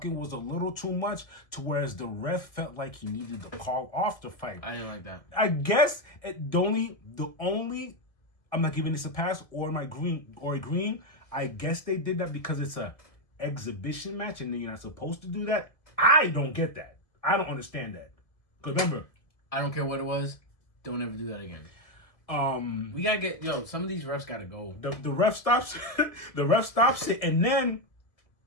was a little too much, to whereas the ref felt like he needed to call off the fight. I didn't like that. I guess the only I'm not giving this a pass or agreeing. I guess they did that because it's a exhibition match and you're not supposed to do that. I don't get that. I don't understand that. Because remember, I don't care what it was. Don't ever do that again. We gotta get some of these refs gotta go. The ref stops. The ref stops it, and then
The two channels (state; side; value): late; right; 1.5 ms